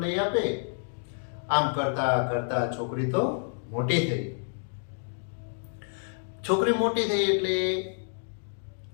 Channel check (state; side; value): silent; right; digital silence